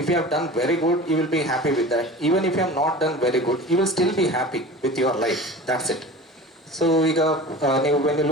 you have done very good, you will be happy with that. Even if you have not done very good, you will still be happy with your life. That's it. So ಈಗ ನೀವು when you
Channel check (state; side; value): normal; both; correlation 0.36